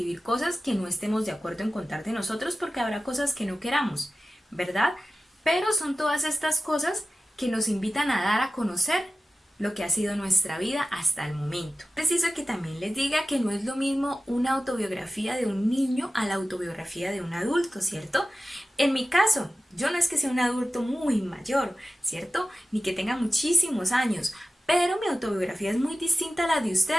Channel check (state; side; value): normal; both; correlation 0.94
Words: cosas que no estemos de acuerdo en contar de nosotros porque habrá cosas que no queramos, ¿verdad? Pero son todas estas cosas que nos invitan a dar a conocer lo que ha sido nuestra vida hasta el momento. Preciso que también les diga que no es lo mismo una autobiografía de un niño a la autobiografía de un adulto, ¿cierto? En mi caso, yo no es que sea un adulto muy mayor, ¿cierto? Ni que tenga muchísimos años, pero mi autobiografía es muy distinta a la de